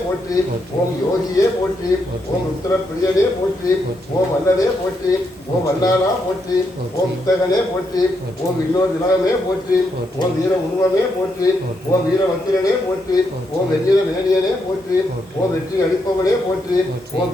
போற்றி. ஓம் யோகியே போற்றி. ஓம் ருத்ரப்பிரியனே போற்றி. ஓம் வல்லனே போற்றி. ஓம் வல்லாளா போற்றி. ஓம் வித்தகனே போற்றி. ஓம் இன்னொரு திலகமே போற்றி. ஓம் வீர உருவமே போற்றி. ஓம் வீரவத்திரனே போற்றி. ஓம் வெண்ணில மேனியனே போற்றி. ஓம் வெற்றி அளிப்பவனே போற்றி. ஓம்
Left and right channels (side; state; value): both; normal; correlation 0.80